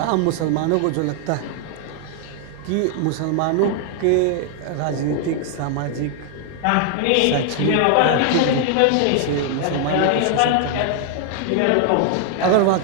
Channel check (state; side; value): different; both; correlation 0.00